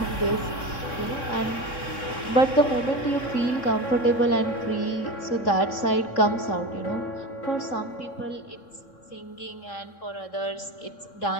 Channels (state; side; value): late; right; 3.6 ms